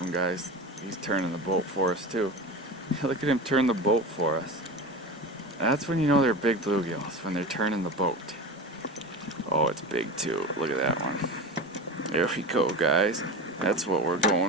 guys. He's turning the boat for us too. Look at him turn the boat for us. That's when you know they're big bluegills, when they're turning the boat. Oh, it's big too. Look at that one. There we go, guys. That's what we're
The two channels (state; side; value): normal; both; correlation 0.28